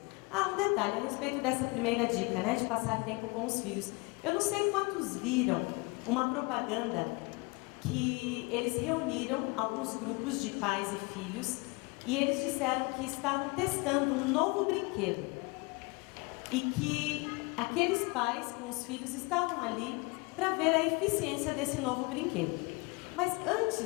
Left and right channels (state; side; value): quieter; right; 27.5 dB